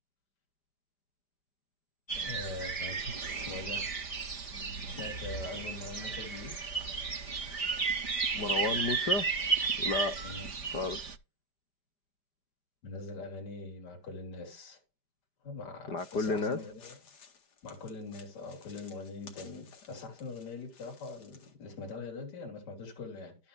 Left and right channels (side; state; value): right; late; 5.0 ms